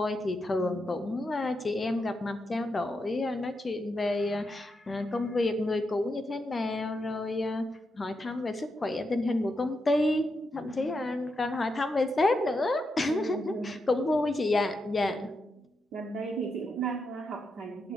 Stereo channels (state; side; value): normal; both; correlation 0.84